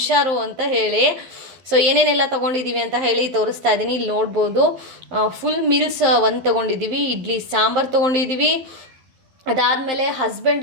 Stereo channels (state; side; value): late; left; 11 ms